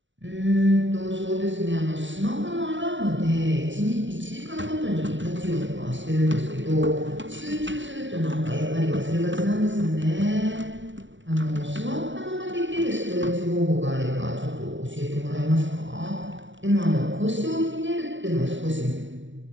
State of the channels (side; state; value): left; late; 0.55 ms